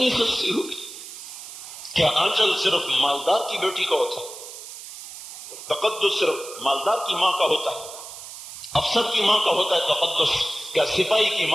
سستی ہوگی. کیا آنچل صرف مالدار کی بیٹی کا ہوتا ہے؟ تقدس صرف مالدار کی ماں کا ہوتا ہے؟ افسر کی ماں کا ہوتا ہے تقدس؟ کیا سپاہی کی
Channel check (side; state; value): right; noise; hiss, 13 dB below the sound